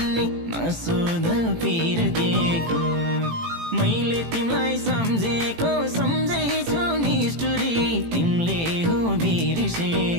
नसोध पिर केको मैले तिमीलाई सम्झेको सम्झैछु निष्ठुरी तिमीले हो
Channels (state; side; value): late; left; 18 ms